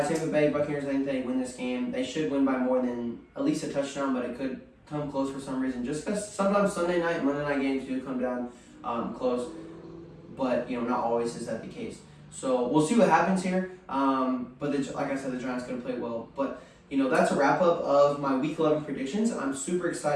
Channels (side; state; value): both; identical; correlation 1.00